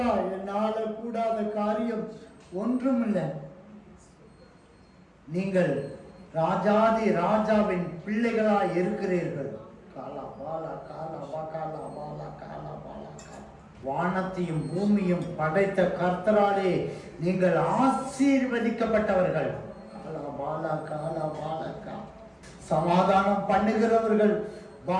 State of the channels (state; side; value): identical; both; correlation 1.00